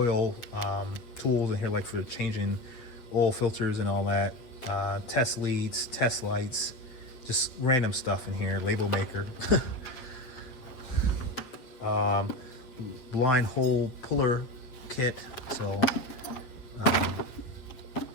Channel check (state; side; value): late; right; 8.1 ms